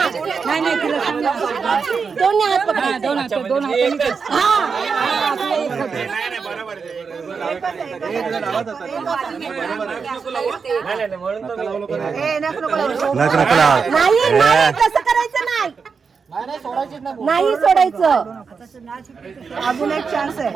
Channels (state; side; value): quieter; left; 5.5 dB